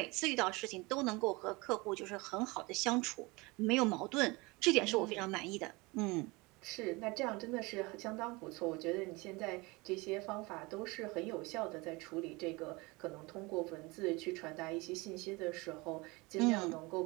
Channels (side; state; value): left; quieter; 24.7 dB